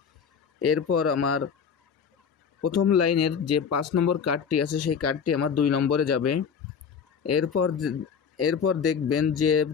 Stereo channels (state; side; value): quieter; right; 6.7 dB